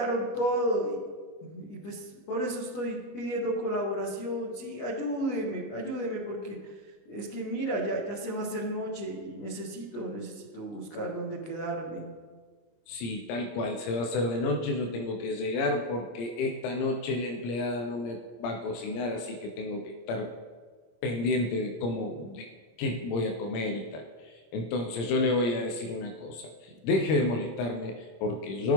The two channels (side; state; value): right; late; 26 ms